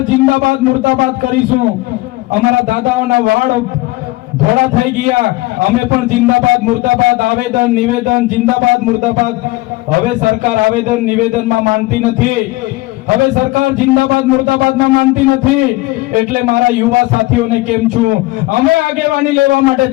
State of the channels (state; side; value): quieter; right; 20.0 dB